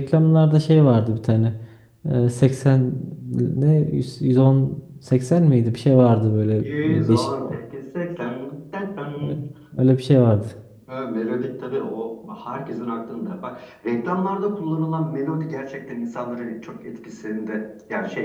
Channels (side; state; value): both; identical; correlation 1.00